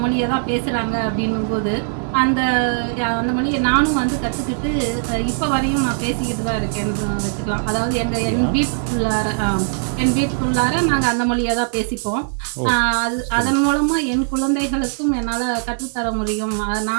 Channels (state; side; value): silent; left; 66 dB below the other